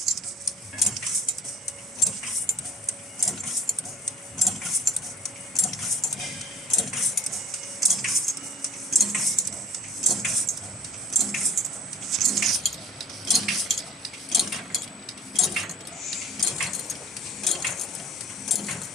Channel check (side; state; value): both; normal; correlation 0.45